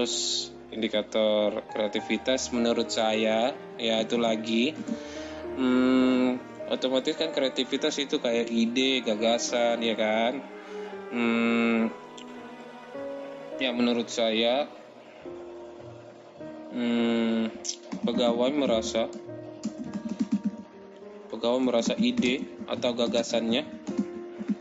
indikator kreativitas menurut saya, ya itu lagi otomatis kan kreativitas itu kayak ide, gagasan, ya kan. Ya menurut saya pegawai merasa ide atau gagasannya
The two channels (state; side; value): identical; both; correlation 1.00